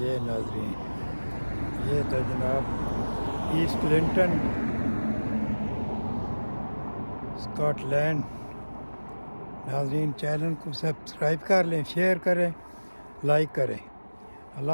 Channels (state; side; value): inverted; both; correlation -1.00